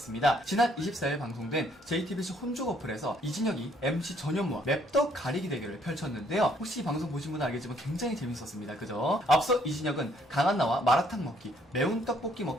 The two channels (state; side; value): normal; both; correlation 0.66